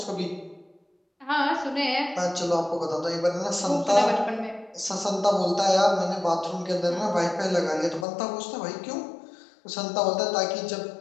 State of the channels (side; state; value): right; drops out; at 8.1 s